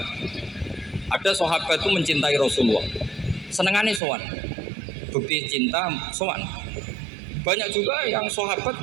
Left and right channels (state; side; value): drops out; left; at 4.0 s